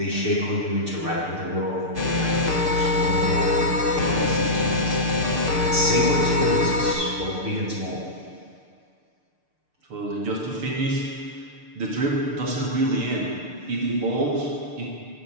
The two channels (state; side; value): late; left; 6.7 ms